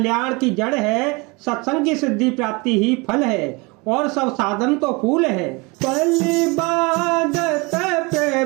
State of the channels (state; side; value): quieter; left; 27.2 dB